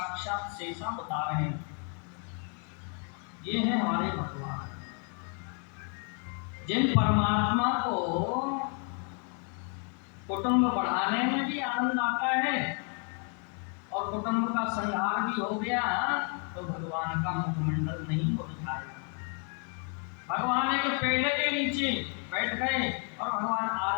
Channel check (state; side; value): quieter; right; 39.6 dB